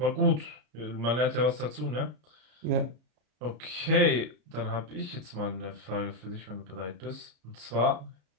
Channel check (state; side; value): late; left; 33 ms